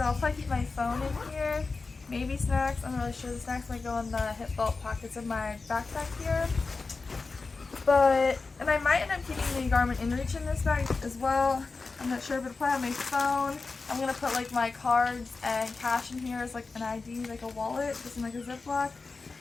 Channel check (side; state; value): right; quieter; 4.1 dB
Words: I'll probably keep my phone in here, maybe snacks. I'm not really sure. The snacks might go in the hip belt pockets of my backpack here. And I might end up keeping the Garmin InReach in this bag as well. I'm not sure, but I'll probably have my phone. I'm going to put like my cards and cash in here as like an ID, like a wallet, just in like a Ziploc.